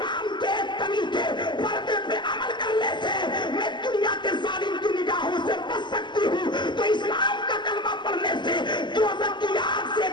के तरीके पर्दे पे अमल करने से मैं दुनिया के जालिम की निगाहों से बच सकती हूँ, तो इस्लाम का कलमा पढ़ने से दोज़ख की आग से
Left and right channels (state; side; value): late; right; 0.22 ms